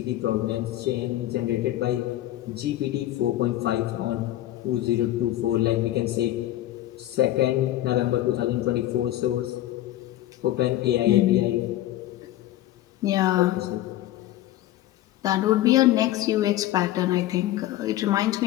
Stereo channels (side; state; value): right; quieter; 14.4 dB